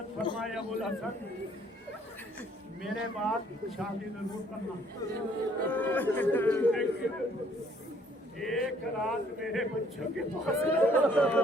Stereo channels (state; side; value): normal; both; correlation 0.62